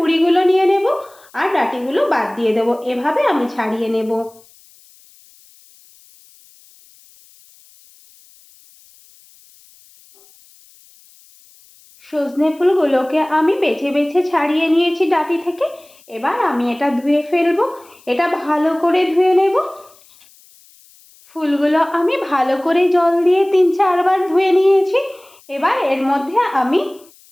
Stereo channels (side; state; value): left; noise; hiss, 28 dB below the sound